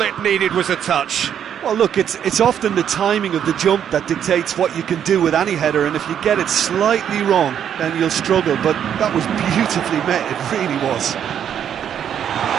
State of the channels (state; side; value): quieter; left; 9.1 dB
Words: it needed was a touch. Well, look, it's often the timing of the jump that dictates what you can do with any header, and if you get it slightly wrong, then you'll struggle, but that was beautifully met, it really was.